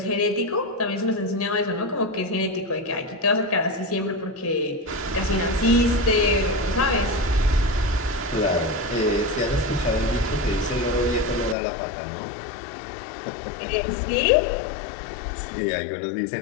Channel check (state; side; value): drops out; right; at 11.6 s